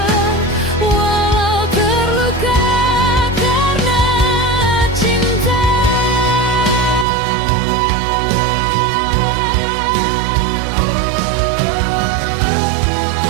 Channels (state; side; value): drops out; left; at 7.1 s